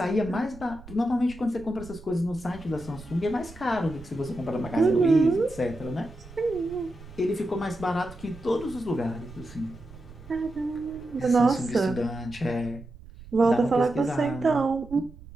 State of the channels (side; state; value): right; noise; rumble, 18 dB below the sound